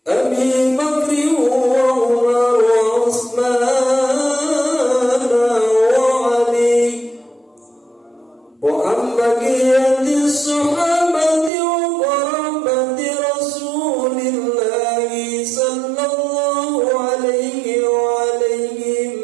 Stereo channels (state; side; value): drops out; left; at 11.5 s